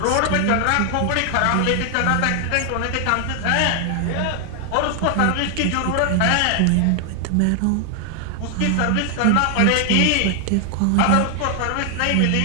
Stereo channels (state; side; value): different; both; correlation 0.00